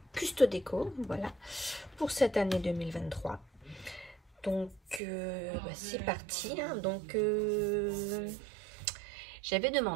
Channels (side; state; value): left; drops out; at 5.0 s